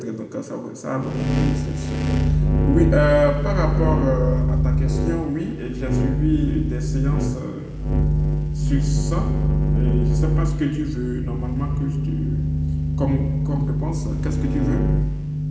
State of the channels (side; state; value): both; identical; correlation 1.00